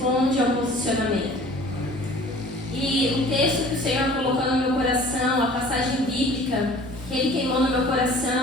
ao posicionamento. E o texto que o Senhor colocou no meu coração, a passagem bíblica que Ele queimou no meu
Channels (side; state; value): both; normal; correlation 0.48